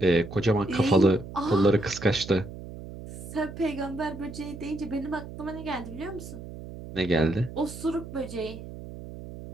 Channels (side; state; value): right; noise; hum, 12 dB below the sound